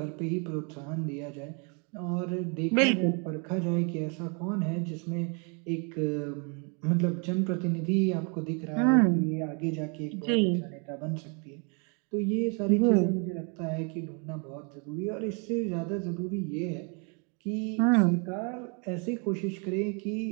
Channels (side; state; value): left; quieter; 35.7 dB